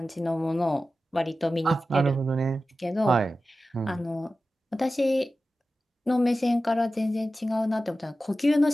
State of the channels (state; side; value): normal; both; correlation 0.94